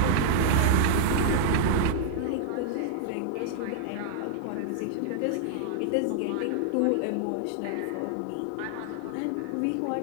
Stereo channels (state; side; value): different; both; correlation -0.01